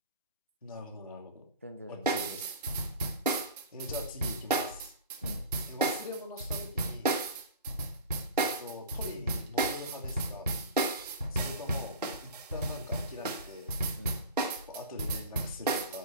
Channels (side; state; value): both; inverted; correlation -0.34